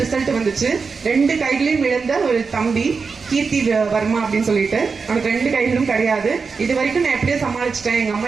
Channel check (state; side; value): quieter; left; 5.0 dB